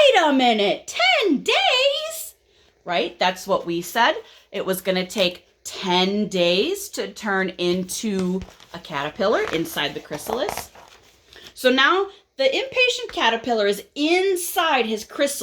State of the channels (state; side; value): identical; both; correlation 1.00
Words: a minute, 10 days? Right? That's what we said. It was going to take 10 days to turn into a caterpillar inside the chrysalis. So now the impatient caterpillar is inside his